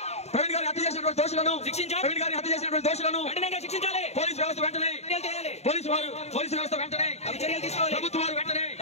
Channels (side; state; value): right; late; 0.31 ms